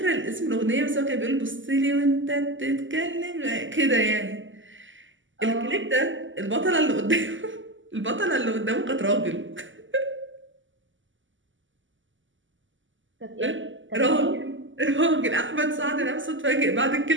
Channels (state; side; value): late; left; 0.55 ms